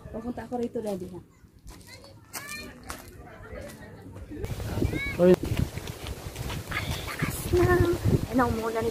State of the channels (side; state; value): both; identical; correlation 1.00